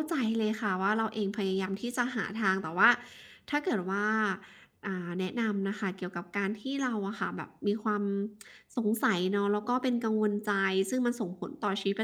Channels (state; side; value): identical; both; correlation 1.00